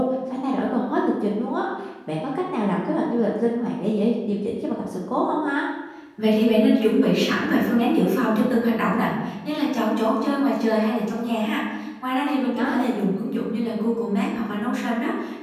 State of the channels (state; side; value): identical; both; correlation 1.00